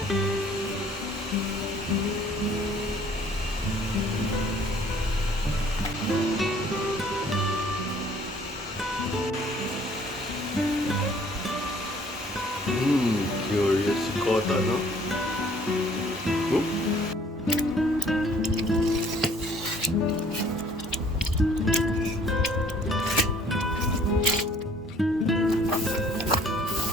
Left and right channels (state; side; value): normal; both; correlation 0.57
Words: Curious kota, no?